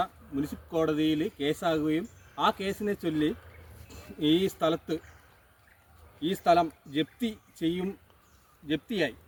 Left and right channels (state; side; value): identical; both; correlation 1.00